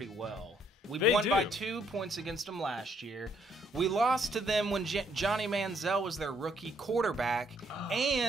well. We won by 2 points against them last year. We lost to them when Johnny Manziel was their rookie quarterback,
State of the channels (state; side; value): normal; both; correlation 0.69